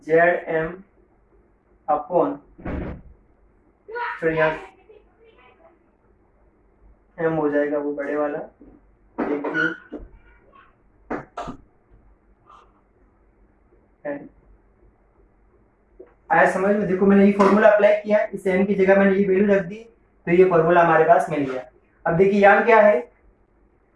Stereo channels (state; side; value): identical; both; correlation 1.00